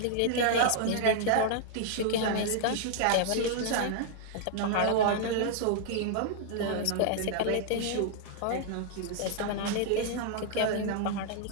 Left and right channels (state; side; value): different; both; correlation -0.01